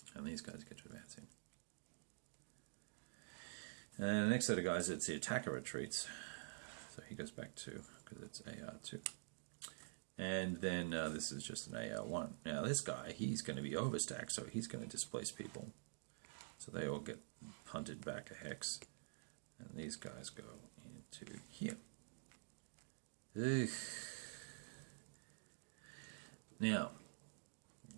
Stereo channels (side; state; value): left; silent; digital silence